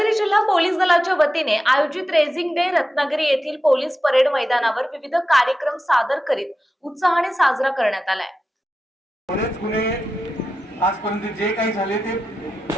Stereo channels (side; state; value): both; normal; correlation 0.92